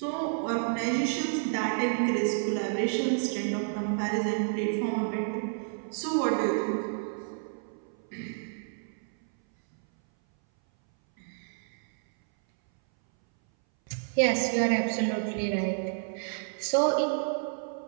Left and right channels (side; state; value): left; silent; 58 dB below the other